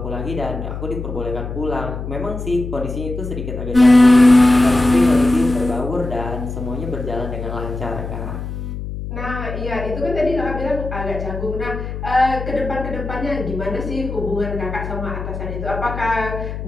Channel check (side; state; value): left; noise; hum, 7 dB below the sound